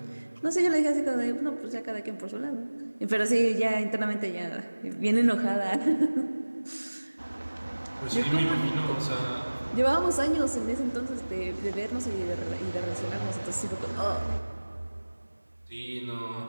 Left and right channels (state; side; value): inverted; both; correlation -1.00